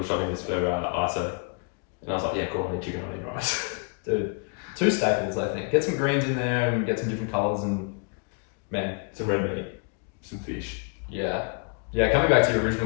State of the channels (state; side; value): quieter; right; 37.7 dB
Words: shopping list for ISO. And I was like, yeah, cool, I need chicken, I need rice. Dude, 2 staples I think. Get some greens in there and get some different colours and man. Some red meat, some fish. Yeah. Yeah, coming back to your original